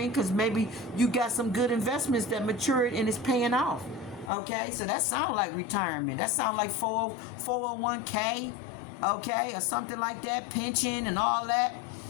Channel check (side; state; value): right; drops out; at 4.3 s